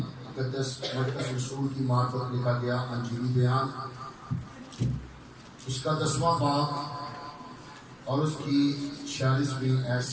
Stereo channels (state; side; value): identical; both; correlation 1.00